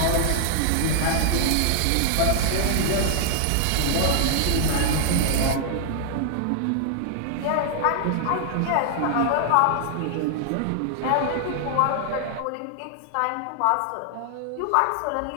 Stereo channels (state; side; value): different; both; correlation 0.00